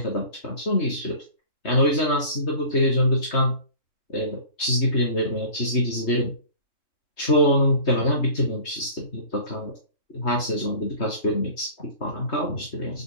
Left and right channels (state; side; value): late; right; 3.2 ms